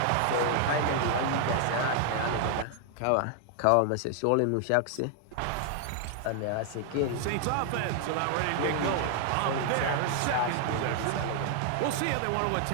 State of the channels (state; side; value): different; both; correlation 0.00